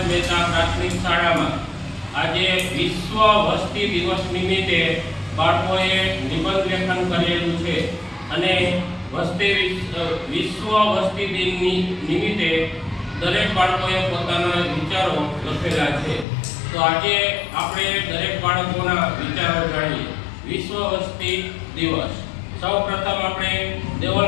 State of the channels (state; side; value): drops out; right; at 16.2 s